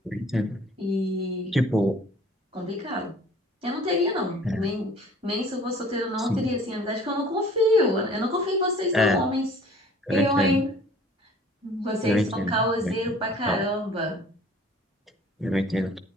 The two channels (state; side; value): normal; both; correlation 0.50